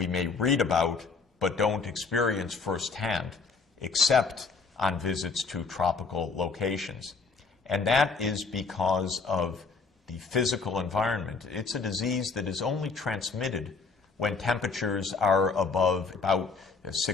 may read about, but don't experience firsthand, except on visits to tropical locations. And that is because of the physical environment. It's a disease that is only transmitted when temperatures are above about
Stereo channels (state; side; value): quieter; right; 4.5 dB